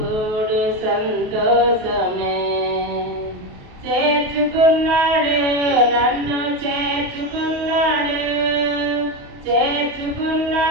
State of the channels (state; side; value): late; left; 28 ms